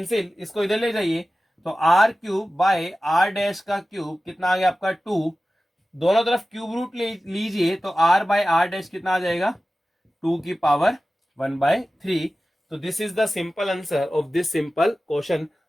इसको इधर ले जाइए, तो r cube by are dash का क्यूब कितना आ गया आपका 2, दोनों तरफ क्यूब रूट लीजिए तो आर बाय आर डैश कितना आ जाएगा 2 की पावर 1/3। तो this is the simple answer of this simple question.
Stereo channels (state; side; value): normal; both; correlation 0.96